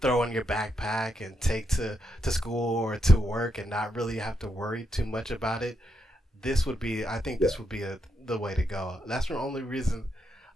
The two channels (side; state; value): both; normal; correlation 0.81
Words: in your backpack and take to school or to work and not really have to worry too much about it, I think Yeah. this would be the way to go. That's the only reason